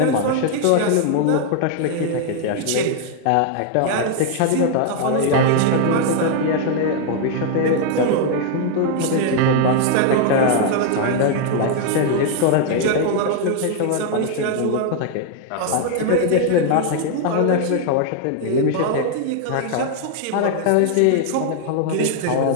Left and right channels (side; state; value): both; different; correlation 0.00